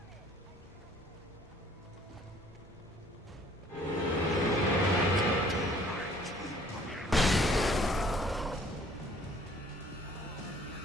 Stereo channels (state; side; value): normal; both; correlation 0.57